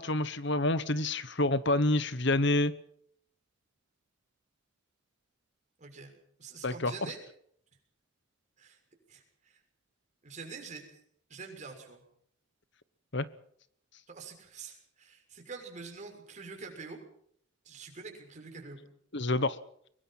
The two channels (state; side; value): normal; both; correlation 0.24